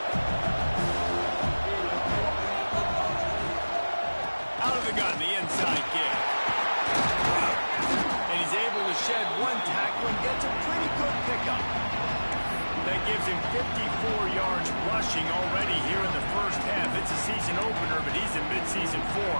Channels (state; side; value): inverted; both; correlation -1.00